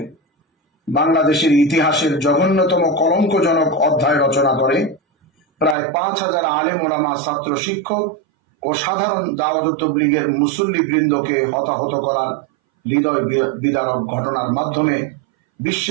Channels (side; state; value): left; drops out; at 5.8 s